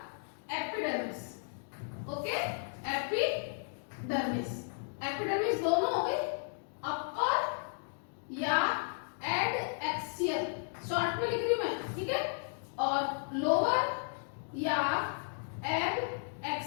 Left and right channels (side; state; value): right; silent; digital silence